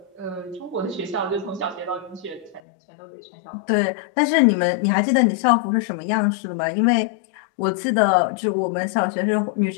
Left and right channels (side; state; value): right; drops out; at 2.6 s